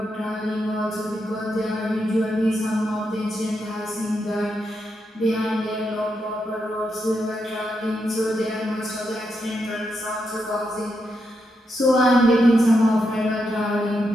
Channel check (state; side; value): normal; both; correlation 0.83